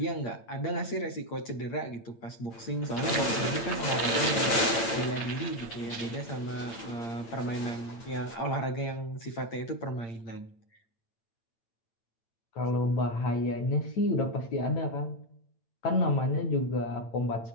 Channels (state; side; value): late; right; 9.0 ms